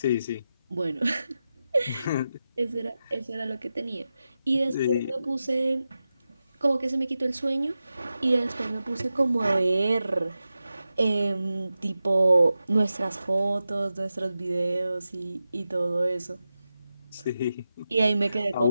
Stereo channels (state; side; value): inverted; both; correlation -0.92